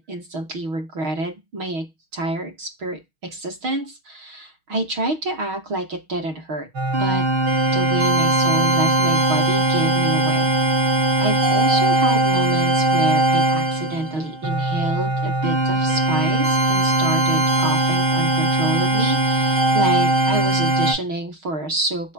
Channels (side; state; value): left; late; 6.3 ms